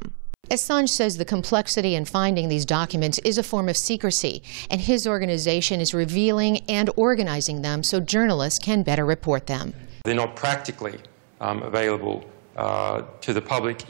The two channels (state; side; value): silent; left; 61 dB below the other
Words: Assange says the complexity in finding these documents is a form of secrecy, and his organization is revealing and organizing them so journalists can better report them. They're not practically available to the public